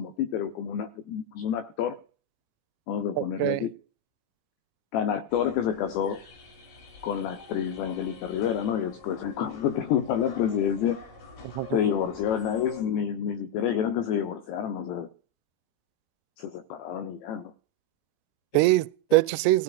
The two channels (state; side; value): late; right; 15 ms